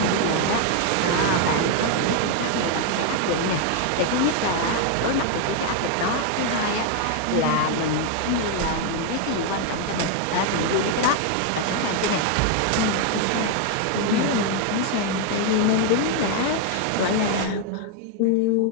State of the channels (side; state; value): both; different; correlation 0.01